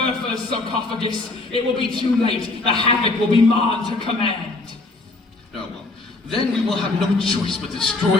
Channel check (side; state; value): right; quieter; 3.2 dB